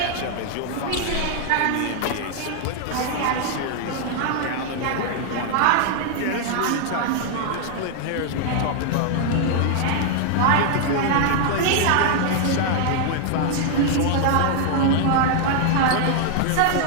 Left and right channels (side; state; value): both; different; correlation 0.00